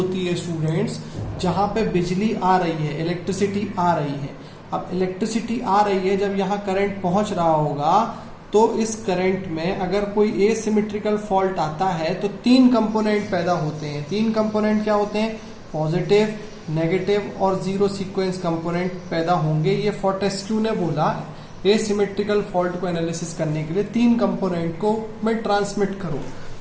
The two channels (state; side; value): identical; both; correlation 1.00